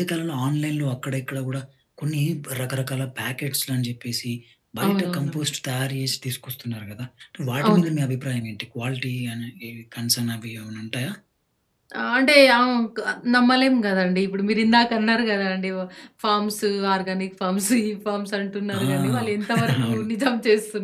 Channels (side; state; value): both; identical; correlation 1.00